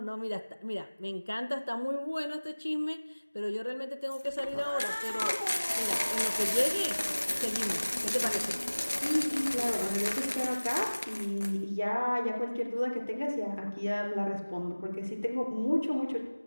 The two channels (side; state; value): both; inverted; correlation -1.00